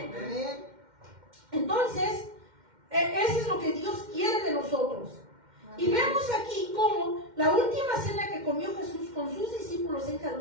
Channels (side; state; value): left; late; 2.1 ms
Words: Amén. Entonces, eso es lo que Dios quiere de nosotros. Y vemos aquí cómo la última cena que comió Jesús con sus discípulos en